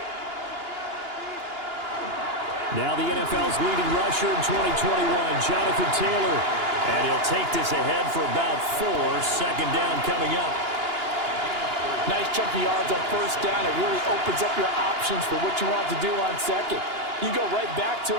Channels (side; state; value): left; late; 2.9 ms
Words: Now the NFL's leading rusher in 2021, Jonathan Taylor. And he'll take this ahead for about 4. Second down coming up. Nice chunky yards on first down. It really opens up your options for what you want to do on second. You go right back to